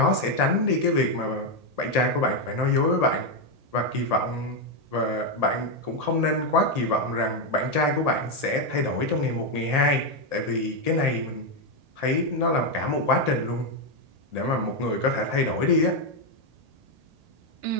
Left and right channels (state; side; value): late; left; 1.8 ms